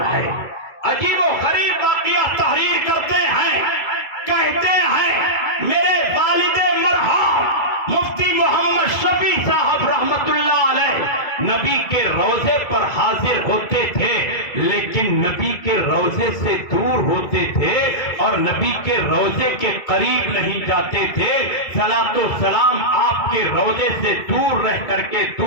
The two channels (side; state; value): right; late; 2.2 ms